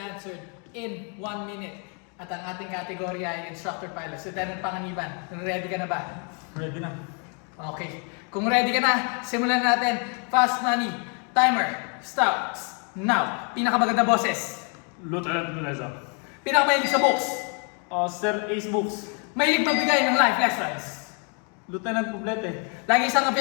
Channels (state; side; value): quieter; right; 38.1 dB